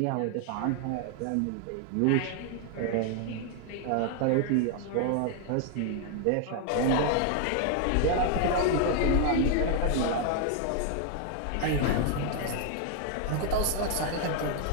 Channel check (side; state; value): both; different; correlation 0.00